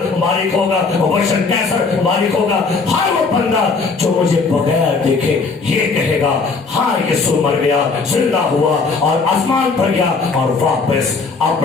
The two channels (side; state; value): right; quieter; 4.4 dB